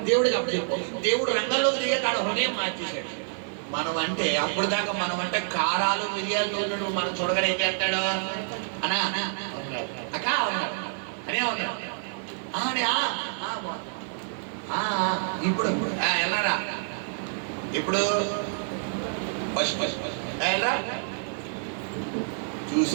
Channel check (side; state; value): left; silent; 60 dB below the other